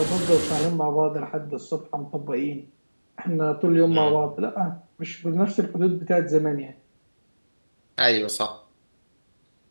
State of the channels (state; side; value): inverted; both; correlation -1.00